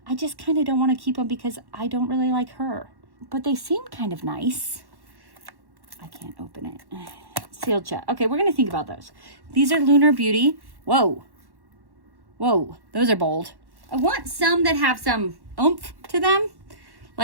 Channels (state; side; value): late; left; 1.1 ms